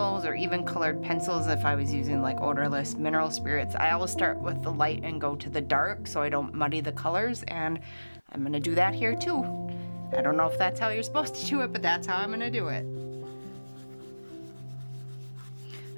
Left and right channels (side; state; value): both; inverted; correlation -1.00